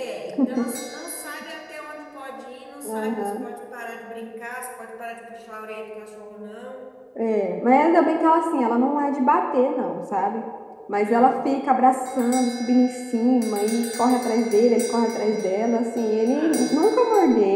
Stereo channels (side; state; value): both; identical; correlation 1.00